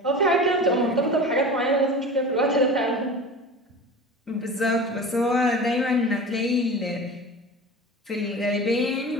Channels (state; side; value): normal; both; correlation 0.34